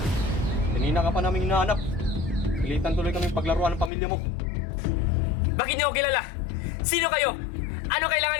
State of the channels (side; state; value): right; drops out; at 3.9 s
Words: Kanina ka pa namin hinahanap. Pilitan tuloy kami paglaruan ng pamilya mo. Bakit niyo ako kilala? Sino kayo? Ano kailangan